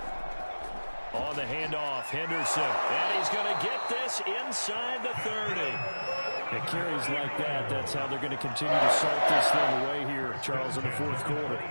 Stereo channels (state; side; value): inverted; both; correlation -1.00